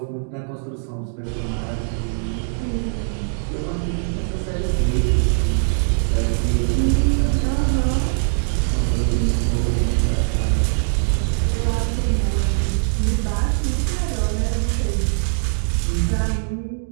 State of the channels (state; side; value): silent; left; digital silence